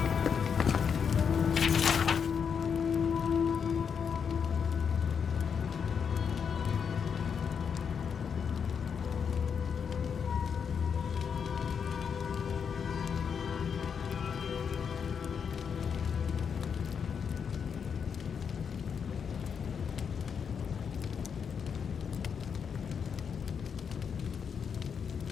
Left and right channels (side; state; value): right; quieter; 6.8 dB